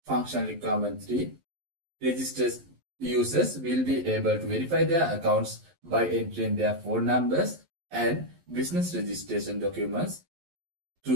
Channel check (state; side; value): late; left; 11 ms